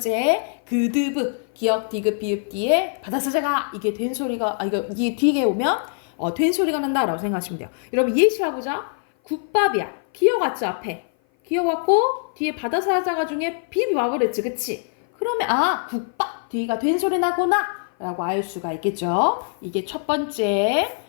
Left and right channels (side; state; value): right; silent; 56 dB below the other